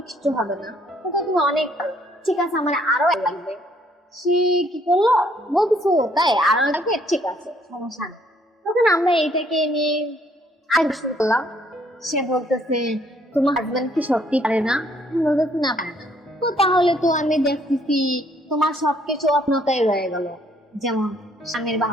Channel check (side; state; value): both; normal; correlation 0.65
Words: কিচ্ছু হবে না, তো তুমি অনেক পারো। ঠিক আছে, আমার আরো এক লাগবে। সে কি করলো, বলতেছে ও তাই, আরো লাগবে, ঠিক আছে সমস্যা নেই। তখন আমরা এইটাকে নিয়ে আর শুরু করলাম। সে বলতেছে তোমার হাজবেন্ড কি সত্যি পারে না? আমি বলতেছি না, পারে না। তো তাহলে তো আমি দেখতেছি তোমার সবকিছু অপূর্ণতাই রয়ে গেল, যেমন স্বামীর